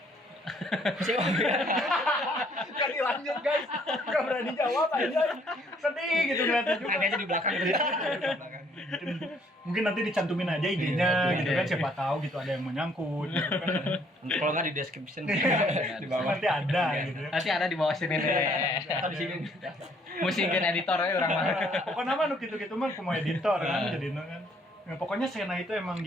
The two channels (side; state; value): both; normal; correlation 0.64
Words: Mesti ngopi. Kan dilanjut guys. Gak berani jawab aja. Sedih gitu ngeliatnya juga. Ada aja di belakang. Mungkin nanti dicantumin aja IG-nya gitu kan, siapa tahu gitu ada yang menyangkut gitu kan. Kalau nggak di description Di bawah nanti ada gitu ya. Nanti ada di bawah sini nih. Atau di sini. Musikin editor aja orang mah. Pokoknya mah gitu-gitu mah aku mau editor kan jadi kan. Nah, pokoknya Sena itu emang